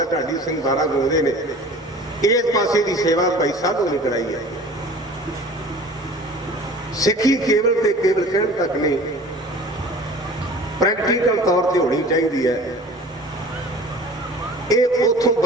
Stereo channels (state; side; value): normal; both; correlation 0.43